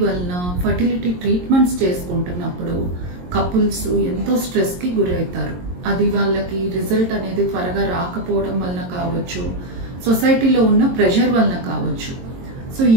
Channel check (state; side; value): late; left; 22 ms